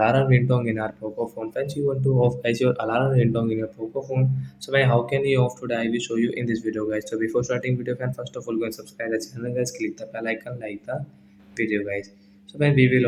ringtone in our Poco phone. Friends, you want to off guys your alarm ringtone in your Poco phone. So man, how can you off today? I will show you in this video guys. So before starting video friend, first of all go and subscribe the channel guys. Click the bell icon, like the video guys. So when we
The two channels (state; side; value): identical; both; correlation 1.00